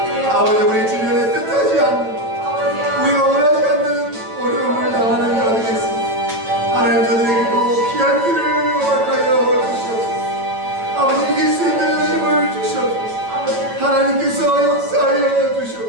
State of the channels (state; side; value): late; left; 9.1 ms